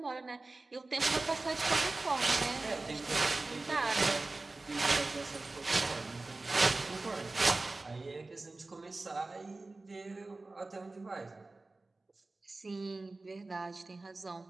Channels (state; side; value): quieter; left; 3.3 dB